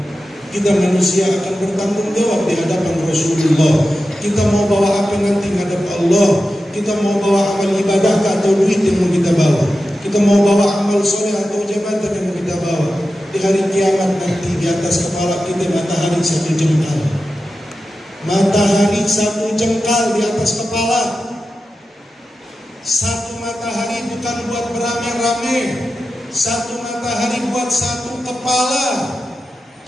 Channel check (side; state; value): both; normal; correlation 0.92